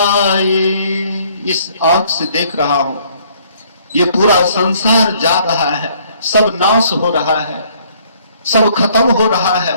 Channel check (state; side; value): inverted; both; correlation -0.63